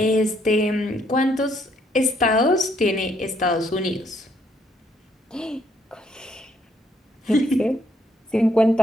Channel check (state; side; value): normal; both; correlation 0.70